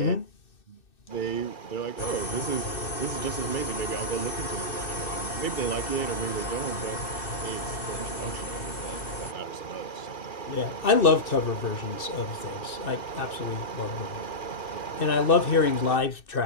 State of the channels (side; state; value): right; late; 2.6 ms